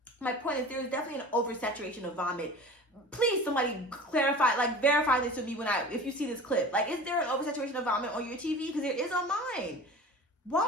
my point is there's definitely an oversaturation of vomit. Please, somebody clarify, like verify this with me if you see this clip. Like, is there an oversaturation of vomit on your TV? Because there is on mine.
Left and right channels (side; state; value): both; normal; correlation 0.38